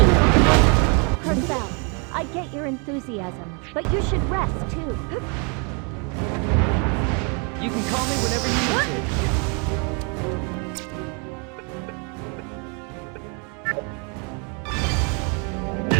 Crystal, I get your enthusiasm, but you should rest too. You can call me whenever you need to.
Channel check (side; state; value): left; quieter; 35.4 dB